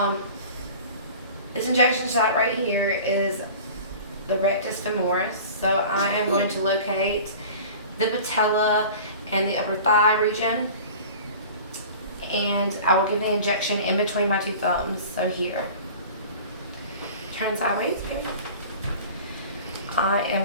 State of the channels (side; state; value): both; inverted; correlation -0.40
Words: This injection site right here is the rectus femoris. So I am going to locate the patella and the upper thigh region, and I will give the injection in between my two thumbs, so here. Turn sideways, baby. I